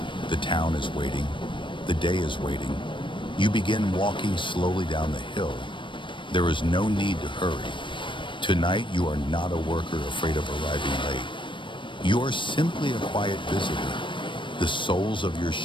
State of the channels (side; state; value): right; late; 0.24 ms